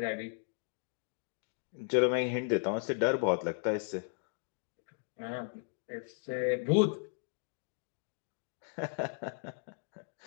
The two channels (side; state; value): right; silent; 54 dB below the other